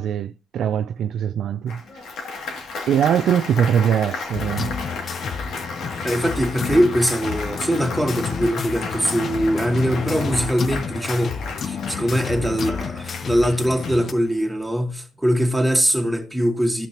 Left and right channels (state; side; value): normal; both; correlation 0.85